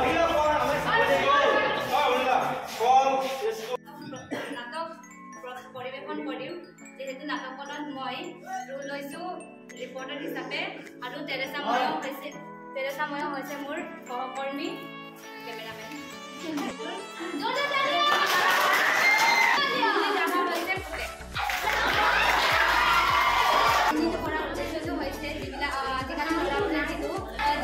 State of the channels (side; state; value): both; identical; correlation 1.00